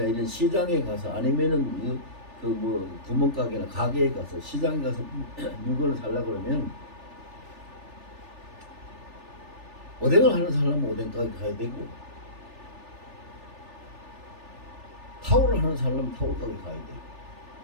이런 시장에 가서, 아니면은 그 뭐 구멍가게나 가게에 가서, 시장에 가서 물건을 살라 그러면 오뎅을 하는 사람은 오뎅 가게 가야 되고, 타올을 하는 사람은 타올 가게 가야 되고,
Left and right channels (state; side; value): late; left; 3.4 ms